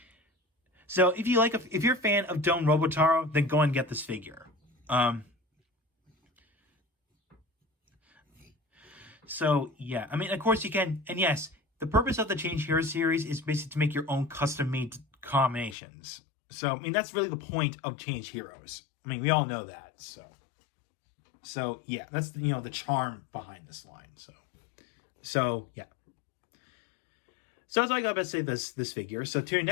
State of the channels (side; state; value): right; drops out; at 15.8 s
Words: if you're a fan of Juo Robotaro, then go and get this figure. So yeah, I mean, of course you can, and yes, the purpose of the Change Hero series is basically to make your own custom-made combinations. So I mean, that's really the point of Change Heroes. I mean, we all know that. So yeah, that's the charm behind this line. So yeah. So that's all I got to say this figure. So till